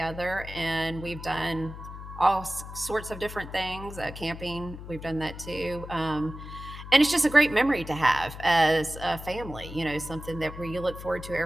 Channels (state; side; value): noise; left; hum, 12 dB below the sound